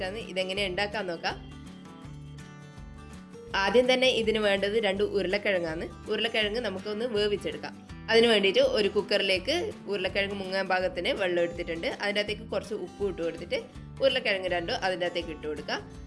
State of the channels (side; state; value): both; identical; correlation 1.00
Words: ഇതെങ്ങനെ ഉണ്ടാക്കാൻ നോക്കാം. ആദ്യം തന്നെ ഇതിന് വേണ്ടത് 2 ഉരുളക്കിഴങ്ങാണ്. ഉരുളക്കിഴങ്ങ് നമുക്കൊന്ന് വേവിച്ചെടുക്കാം. അതിന് വേണ്ടിയിട്ട് ഒരു കുക്കറിലേക്ക് ഉരുളക്കിഴങ്ങ് മുങ്ങാൻ പാകത്തിന് വെള്ളം എടുത്തിട്ടുണ്ട്. അതിൻ്റെ അകത്തേക്ക് കുറച്ച് ഉപ്പ് ഇട്ട് കൊടുത്തിട്ട് ഉരുളക്കിഴങ്ങ് 2 അതിൻ്റെ അകത്തേക്ക് ഇട്ട് കൊടുക്കാം.